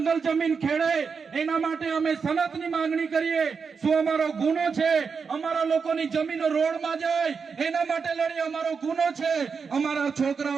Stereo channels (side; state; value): left; quieter; 5.6 dB